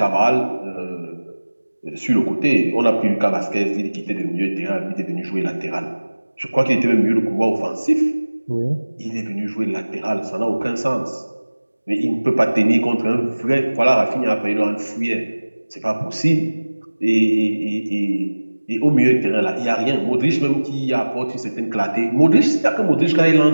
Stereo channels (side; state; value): both; inverted; correlation -1.00